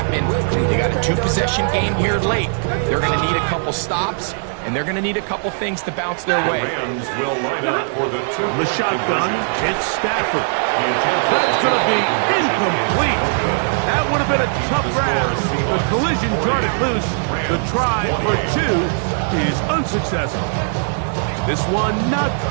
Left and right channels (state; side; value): silent; left; digital silence